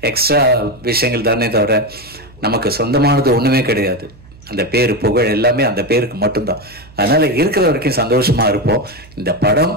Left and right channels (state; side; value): noise; right; hum, 23 dB below the sound